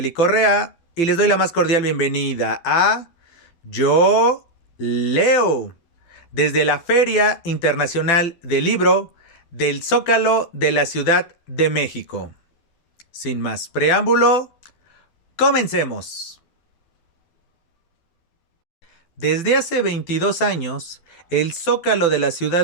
Correa y les doy la más cordial bienvenida a Yo Leo, desde la Feria Internacional del Libro del Zócalo de la Ciudad de México. Sin más preámbulo, comencemos. Desde hace 22 años, el Zócalo de la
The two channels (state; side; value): late; right; 12 ms